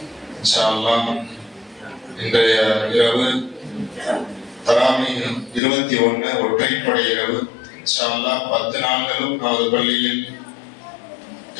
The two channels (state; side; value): drops out; right; at 5.6 s